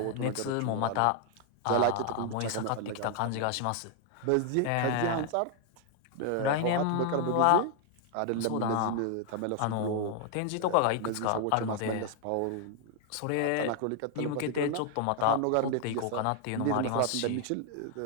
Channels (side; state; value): both; different; correlation 0.00